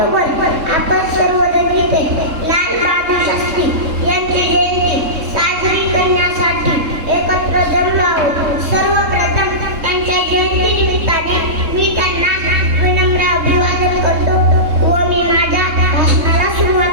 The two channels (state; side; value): late; left; 3.7 ms